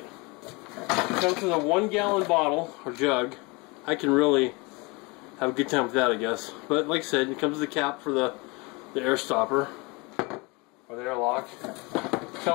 It comes with a 1-gallon bottle or jug. I can really have a good time with that, I guess. But like I said, it comes with a cap for the air stopper or the airlock. It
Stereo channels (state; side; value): quieter; right; 27.1 dB